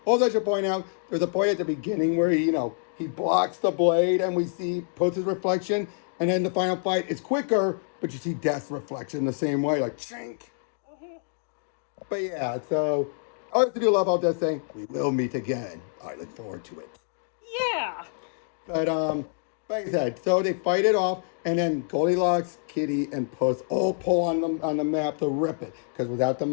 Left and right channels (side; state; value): right; silent; digital silence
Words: Also, I should point out, there's a point at the beginning where he blocks the blade and we see Puss's reflection, and then the final fight is quicker, but you see Death's reflection the same way, like chink. But yeah, so I also do love all Death saying, we will meet again. I look forward to it. Yeah. But like I said, so they fight it off, and then Goldilocks, Kitty, and Puss all pull on the map to rip it. Because without the